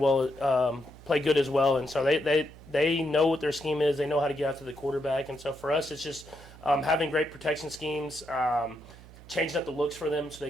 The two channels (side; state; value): right; noise; hum, 20 dB below the sound